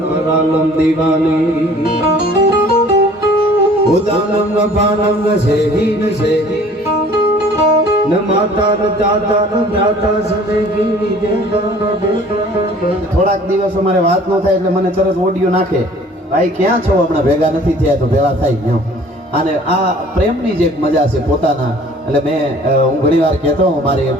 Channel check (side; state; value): both; normal; correlation 0.51